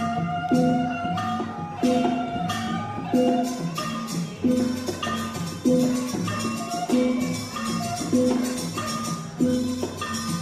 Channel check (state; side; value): identical; both; correlation 1.00